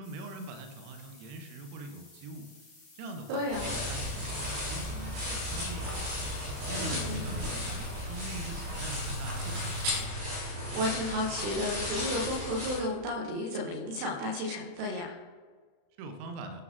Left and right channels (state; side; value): late; left; 35 ms